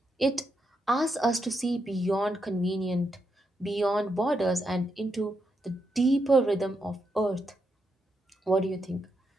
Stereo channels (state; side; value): normal; both; correlation 0.82